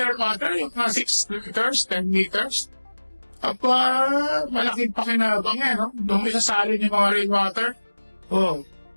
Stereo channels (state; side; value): inverted; both; correlation -1.00